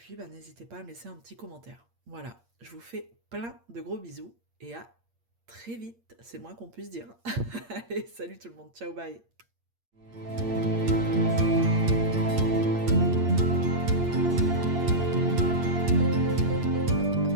bah, n'hésitez pas à me laisser un petit commentaire. Voilà, je vous fais plein de gros bisous et à très vite, c'est le moins qu'on puisse dire. Allez, salut tout le monde, ciao, bye.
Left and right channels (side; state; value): left; late; 8.7 ms